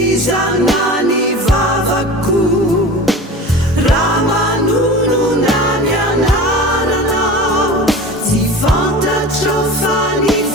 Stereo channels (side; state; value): both; normal; correlation 0.34